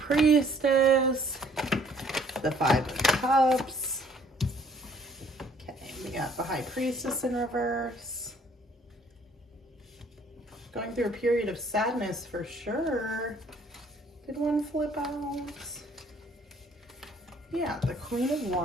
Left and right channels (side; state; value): both; normal; correlation 0.60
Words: the 5 of Cups. Okay, we got the High Priestess in reverse. Going through a period of sadness for sure. Did one flip out? Yeah, the Queen of